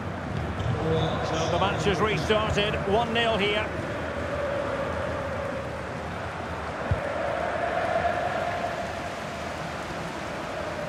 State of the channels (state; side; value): identical; both; correlation 1.00